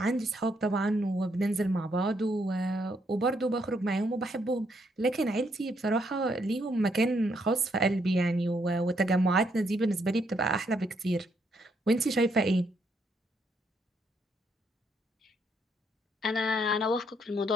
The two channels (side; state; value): both; normal; correlation 0.74